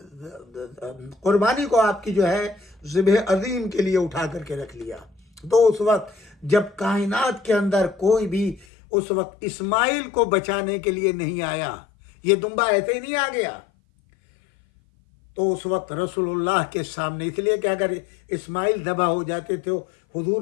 قربانی کو آپ کی جو ہے ذبح عظیم کے لیے اٹھا کر کے رکھ لیا. تو اس وقت جب کائنات کے اندر کوئی بھی اس وقت اسماعیل کو بچانے کے لیے نہیں آیا، یہ دمبا ایسے ہی نہیں آ گیا، تو اس وقت رسول اللہ کے سامنے، اس لیے کہ اگر اسماعیل ذبح ہو جاتے تھے حضور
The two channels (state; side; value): drops out; right; at 8.7 s